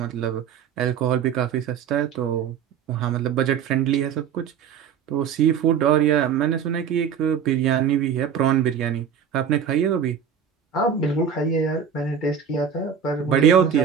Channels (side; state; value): left; quieter; 7.6 dB